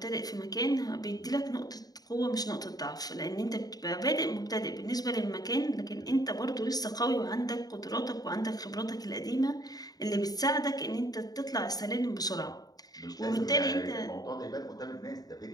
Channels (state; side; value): late; right; 0.18 ms